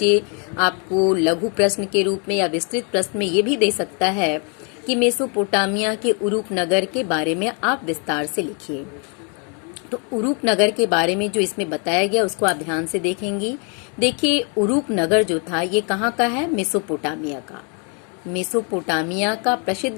आपको लघु प्रश्न के रूप में या विस्तृत प्रश्न में ये भी दे सकता है कि मेसोपोटामिया के उरूक नगर के बारे में आप विस्तार से लिखिए। तो उरूक नगर के बारे में जो इसमें बताया गया उसको आप ध्यान से देखेंगी। देखिए उरूक नगर जो था ये कहाँ का है? मेसोपोटामिया का। मेसोपोटामिया का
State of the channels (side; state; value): right; quieter; 36.7 dB